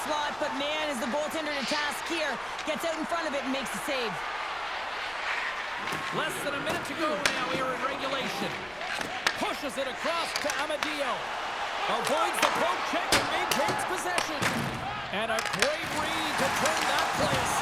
slot, but man, is the goaltender to task here. Gets out in front of it and makes the save. Less than a minute to go now here in regulation. Pushes it across to Amadio. Avoids the poke check and maintains possession. And a great read to turn that play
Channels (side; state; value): left; noise; rumble, 25 dB below the sound